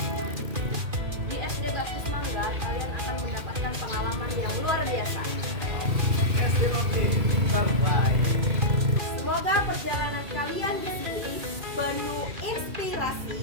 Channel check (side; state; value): left; late; 2.4 ms